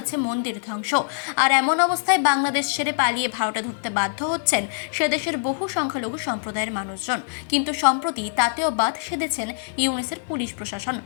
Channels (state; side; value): silent; right; digital silence